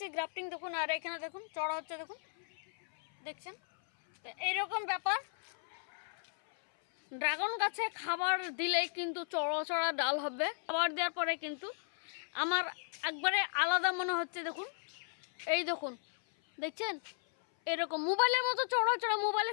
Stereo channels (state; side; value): silent; right; 54 dB below the other